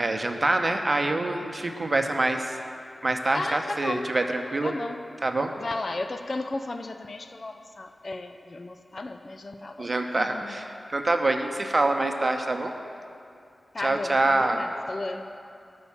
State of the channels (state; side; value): normal; both; correlation 0.96